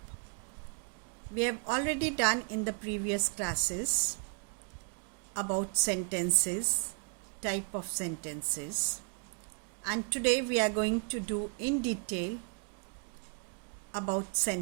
We have already done in the previous classes about sentences, type of sentences, and today we are going to do in detail about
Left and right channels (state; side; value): quieter; left; 39.8 dB